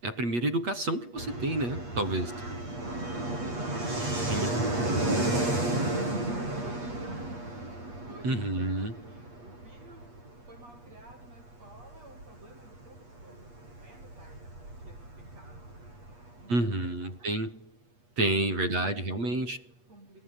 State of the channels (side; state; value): left; late; 8.4 ms